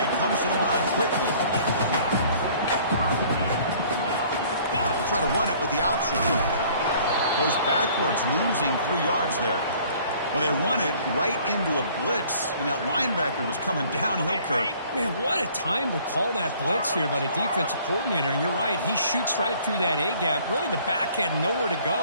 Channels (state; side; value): inverted; both; correlation -0.55